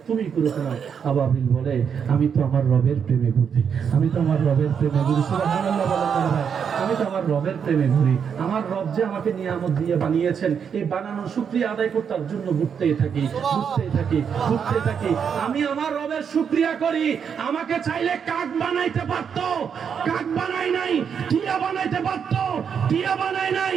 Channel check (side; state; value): left; quieter; 7.2 dB